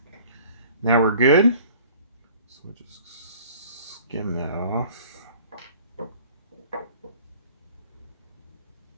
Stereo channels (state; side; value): inverted; both; correlation -0.49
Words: now we're good. So we'll just skim that off.